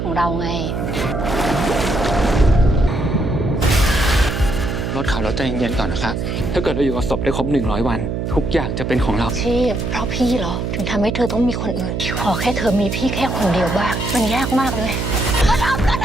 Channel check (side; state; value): right; noise; hum, 3 dB below the sound